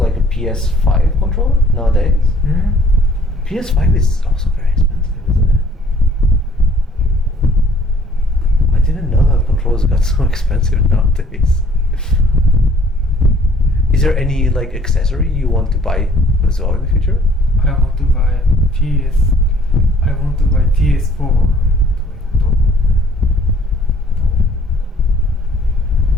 a PS5 controller nowadays? PS5 is also very expensive, isn't it? I didn't know that controllers got so expensive nowadays. Is there any like accessory you want to buy as well in the future? I want to buy PS4.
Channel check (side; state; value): both; normal; correlation 0.57